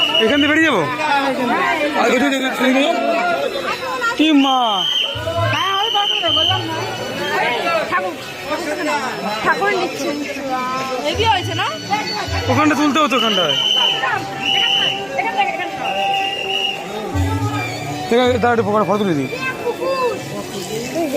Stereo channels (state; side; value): identical; both; correlation 1.00